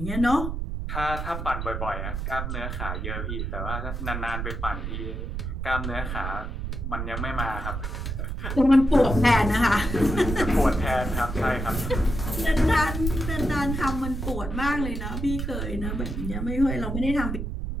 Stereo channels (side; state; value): right; noise; rumble, 4 dB below the sound